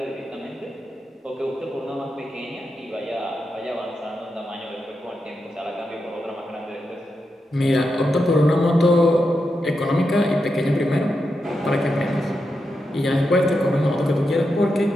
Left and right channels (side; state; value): both; normal; correlation 0.87